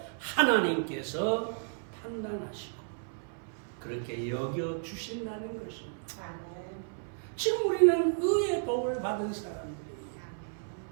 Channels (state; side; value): silent; left; 56 dB below the other